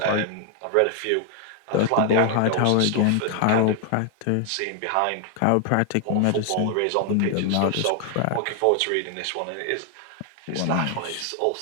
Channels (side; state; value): both; different; correlation 0.00